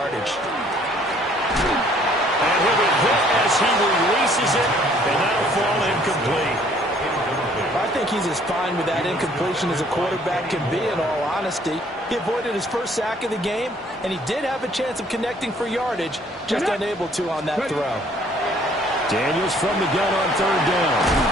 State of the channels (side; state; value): both; normal; correlation 0.60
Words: And he'll be hit as he releases it, and that'll fall incomplete. I think he's as fine with that incompletion as a quarterback can be, in all honesty. He avoided his 1st sack of the game, and he did have a chance of connecting for yardage, just unable to on that throw. Daniels from the gun on 3rd down.